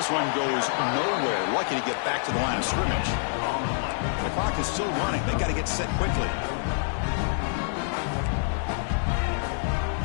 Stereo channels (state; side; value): silent; right; digital silence